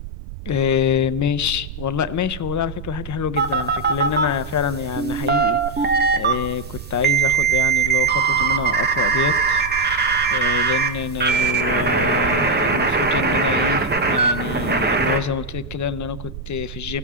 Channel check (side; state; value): right; noise; rumble, 12 dB below the sound